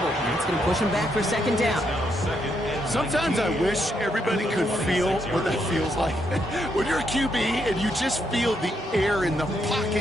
That's going to push him back for second down. Sometimes I wish everybody could feel what that feels like. When you're a QB and you just feel the air in the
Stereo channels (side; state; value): both; normal; correlation 0.77